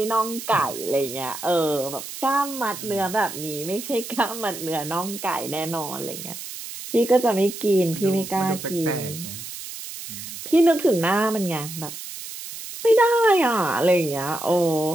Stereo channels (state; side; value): noise; right; hiss, 10 dB below the sound